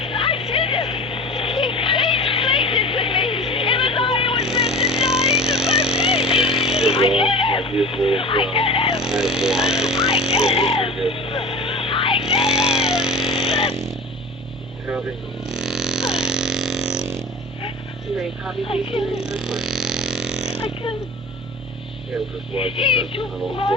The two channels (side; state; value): right; noise; hum, 19 dB below the sound